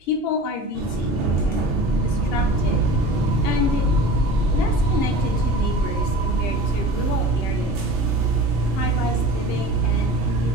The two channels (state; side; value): normal; both; correlation 0.38